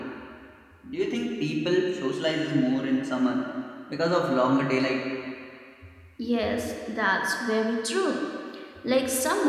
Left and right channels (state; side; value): identical; both; correlation 1.00